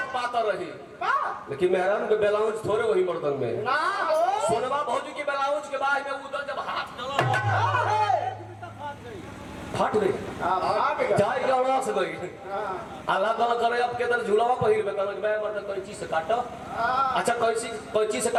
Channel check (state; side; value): identical; both; correlation 1.00